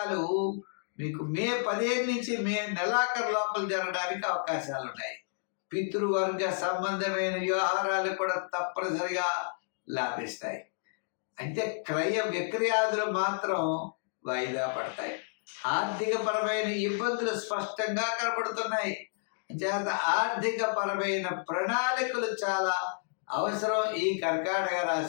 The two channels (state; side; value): silent; right; digital silence